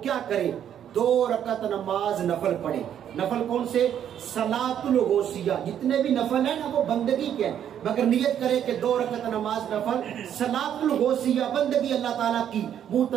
کرے، 2 رکعت نماز نفل پڑھے. نفل کون سے؟ صلاۃ الغوثیہ. جتنے بھی نفل ہیں نا وہ بندگی کے ہیں، مگر نیت کرے کہ 2 رکعت نماز نفل صلاۃ الغوثیہ بندگی اللہ تعالیٰ کی، منہ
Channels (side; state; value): left; quieter; 9.7 dB